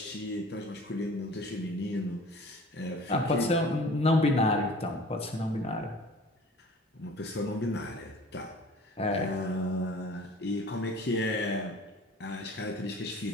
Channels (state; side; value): normal; both; correlation 0.46